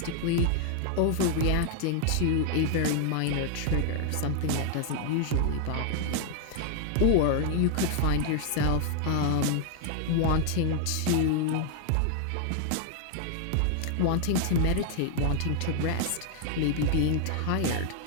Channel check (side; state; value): both; different; correlation 0.00